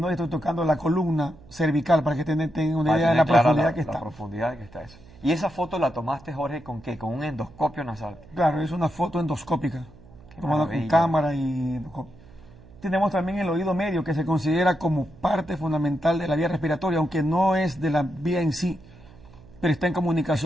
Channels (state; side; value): noise; right; hum, 22 dB below the sound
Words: estoy tocando la columna cervical para que tengan una idea de la profundidad que está. La profundidad que está eso. ¿Y esa foto la tomaste, Jorge, con qué? ¿Con un endoscopio nasal? Claro, es una foto endoscópica, tomada con cámara y... Tenemos también el oído medio, que se considera como parte fundamental de la vía respiratoria, aunque no es de la vía en sí, pero está en